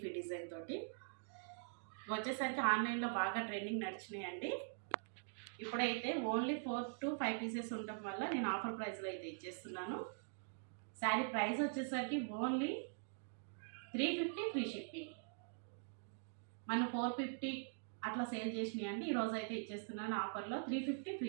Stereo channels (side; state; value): left; silent; digital silence